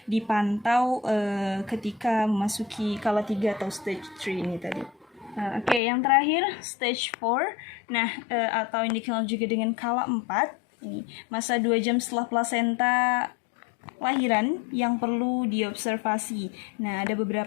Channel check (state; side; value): drops out; right; at 5.8 s